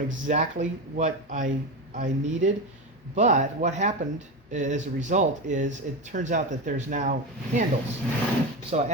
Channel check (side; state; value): both; normal; correlation 0.19